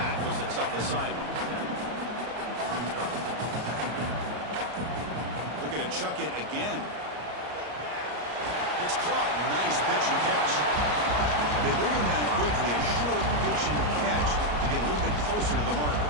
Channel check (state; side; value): late; left; 34 ms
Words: was a tough assignment. Looking to chuck it again. It's caught. Nice pitch and catch. They bring him down quickly. A short pitch and catch to get a little bit closer to the marker.